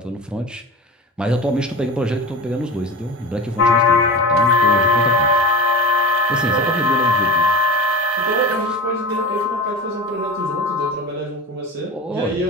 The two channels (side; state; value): both; normal; correlation 0.31